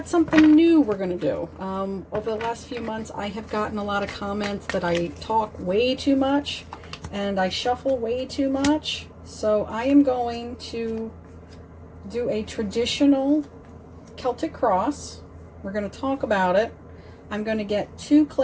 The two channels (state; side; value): identical; both; correlation 1.00